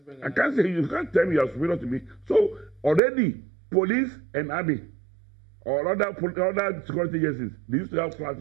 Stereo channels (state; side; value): drops out; left; at 3.0 s